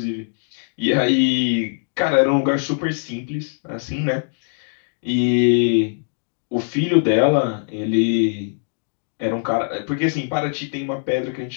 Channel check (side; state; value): right; silent; digital silence